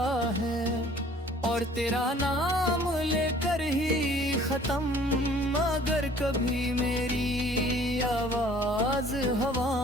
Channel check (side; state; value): both; normal; correlation 0.53